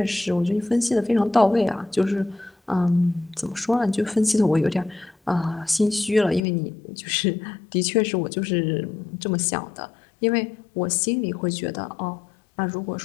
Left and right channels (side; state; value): right; drops out; at 6.4 s